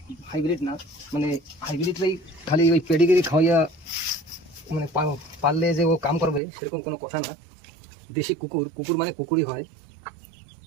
হাইব্রিড না। মানে হাইব্রিডটাই খালি ওই পেডিগ্রি খাওয়াইয়া মানে পারলে যে ও কাম করবে সেরকম কোনো কথা না। দেশি কুকুর, কুকুর মানে কুকুরই হয়।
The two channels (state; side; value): drops out; left; at 6.4 s